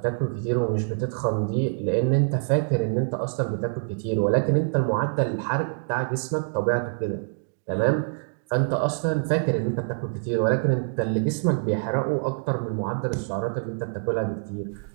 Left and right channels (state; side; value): silent; left; digital silence